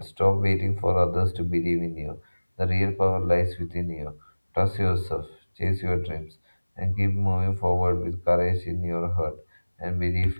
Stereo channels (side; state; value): both; inverted; correlation -1.00